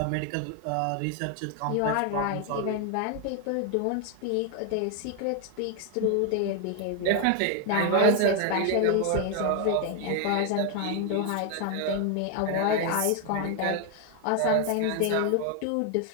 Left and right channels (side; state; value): both; different; correlation 0.00